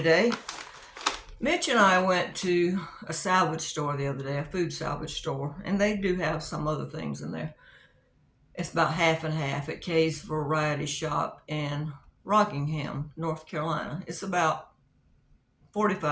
Mitch and I went to a salvage store the other day, a food salvage store, and they do have some other things in there. It's about half and half at Kay's Variety Shop in Rockingham, North Carolina. It's about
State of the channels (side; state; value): both; identical; correlation 1.00